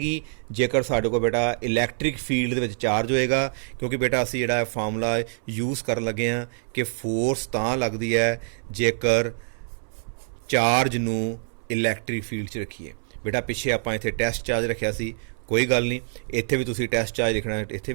ਜੇਕਰ ਸਾਡੇ ਕੋਲ ਬੇਟਾ ਇਲੈਕਟ੍ਰਿਕ ਫੀਲਡ ਦੇ ਵਿੱਚ ਚਾਰਜ ਹੋਏਗਾ। ਕਿਉਂਕਿ ਬੇਟਾ ਅਸੀਂ ਜਿਹੜਾ ਫਾਰਮੂਲਾ ਯੂਜ਼ ਕਰਨ ਲੱਗੇ ਹਾਂ ਕਿ ਫੋਰਸ ਤਾਂ ਲੱਗਦੀ ਹੈ ਜੇਕਰ ਚਾਰਜ ਨੂੰ ਇਲੈਕਟ੍ਰਿਕ ਫੀਲਡ 'ਚ ਰੱਖੀਏ। ਬੇਟਾ ਪਿੱਛੇ ਆਪਾਂ ਇੱਥੇ ਟੈਸਟ ਚਾਰਜ ਰੱਖਿਆ ਸੀ, ਕੋਈ ਗੱਲ ਨਹੀਂ, ਇੱਥੇ ਵੀ ਤੁਸੀਂ ਟੈਸਟ ਚਾਰਜ ਲਿਖਣਾ ਇੱਥੇ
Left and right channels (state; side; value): silent; left; 61 dB below the other